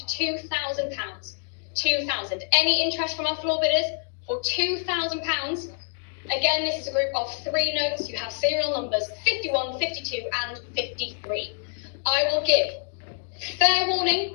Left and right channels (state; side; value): silent; right; 61 dB below the other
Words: £2,000. 2,000. Any interest from our floor bidders for £2,000? Again, this is a group of 3 notes. You have serial numbers 51, 52 and 53. I will give fair warning